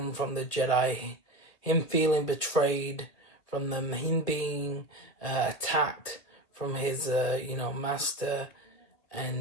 from the Jedi, him feeling betrayed from them, him being attacked from his, master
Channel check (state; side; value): late; right; 2.3 ms